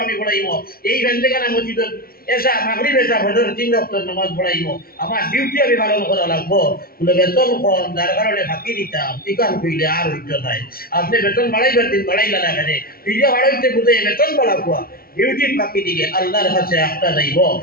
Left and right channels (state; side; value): late; right; 0.43 ms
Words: আমি পড়াইব, এই ভেন্দেখানা মসজিদ এসা মাগরিব এসা ফজর ৩ ওয়াক্ত নামাজ পড়াইব, আমার ডিউটি আমি পালন করা লাগবো। বলে বেতন কম যার কারণে ফাঁকি দিতাম, টিকান কইলে আর হইতো নাই, আপনি বেতন বাড়াইবার দিন বাড়াইলা না কেন, ফিরিয়া বাড়াইতে বুঝে বেতন বাড়াবো, ডিউটির ফাঁকি দিলে আল্লাহর কাছে একটা যাইব,